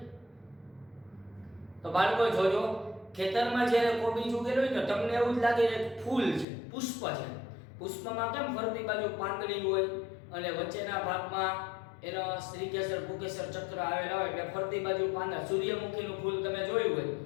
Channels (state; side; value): drops out; right; at 6.5 s